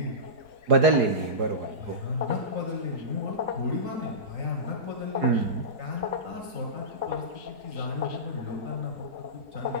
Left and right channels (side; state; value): left; late; 4.8 ms